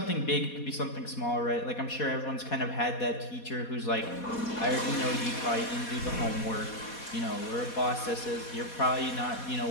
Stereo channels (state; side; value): late; right; 4.2 ms